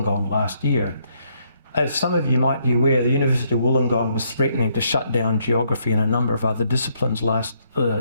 last year. As some of you might be aware, the University of Wollongong was threatening to shut down geography and a number of other disciplines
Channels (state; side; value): inverted; both; correlation -0.72